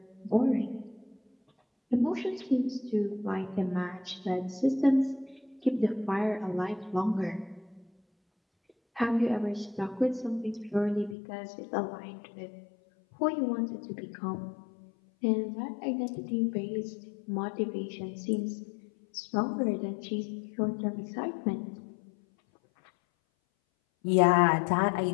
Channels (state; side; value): drops out; right; at 11.2 s